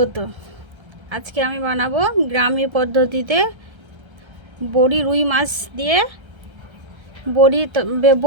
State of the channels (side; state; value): left; late; 1.3 ms